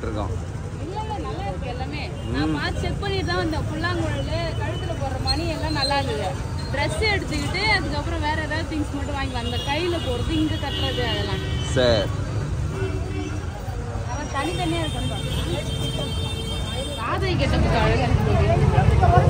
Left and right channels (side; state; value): both; identical; correlation 1.00